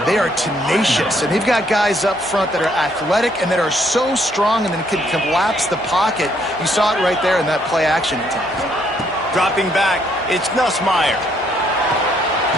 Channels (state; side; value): normal; both; correlation 0.69